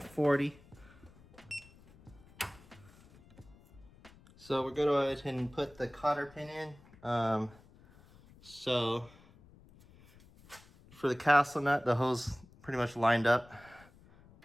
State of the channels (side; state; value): left; noise; rumble, 25 dB below the sound